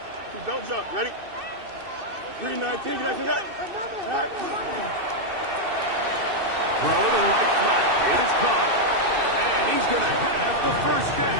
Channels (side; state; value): left; late; 2.6 ms